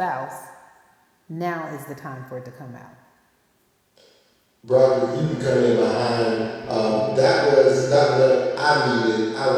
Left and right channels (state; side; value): identical; both; correlation 1.00